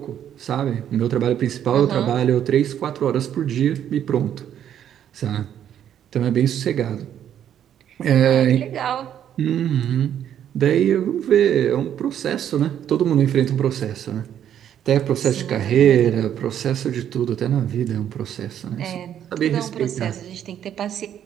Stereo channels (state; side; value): quieter; left; 10.0 dB